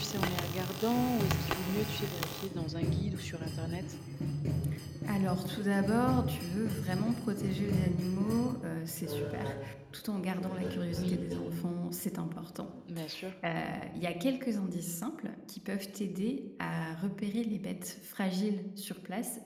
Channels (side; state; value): both; identical; correlation 1.00